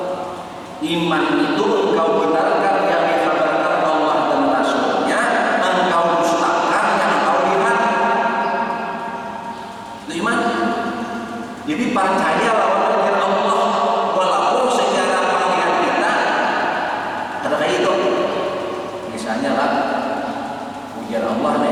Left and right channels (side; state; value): both; identical; correlation 1.00